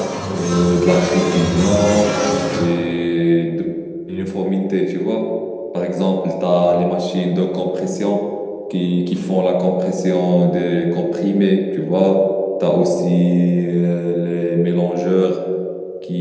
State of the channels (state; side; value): identical; both; correlation 1.00